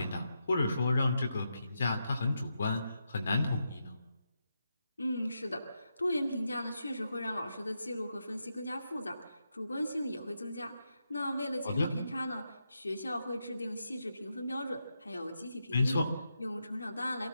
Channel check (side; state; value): both; inverted; correlation -0.85